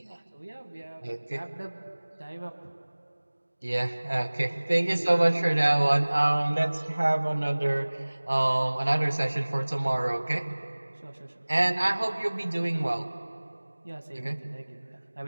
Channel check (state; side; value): inverted; both; correlation -1.00